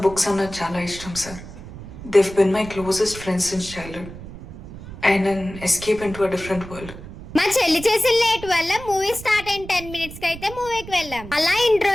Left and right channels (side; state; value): right; noise; rumble, 14 dB below the sound